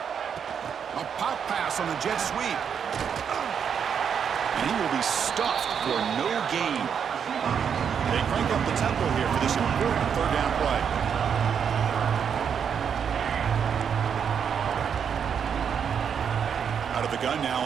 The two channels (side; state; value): left; quieter; 7.4 dB